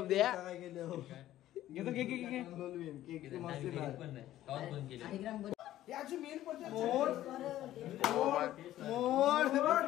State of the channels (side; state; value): right; quieter; 13.7 dB